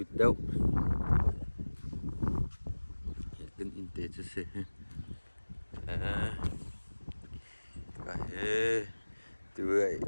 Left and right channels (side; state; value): both; inverted; correlation -1.00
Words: deu kan in te che se ka he tu